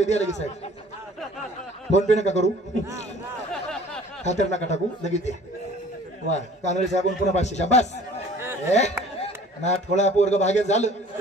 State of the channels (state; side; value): normal; both; correlation 0.50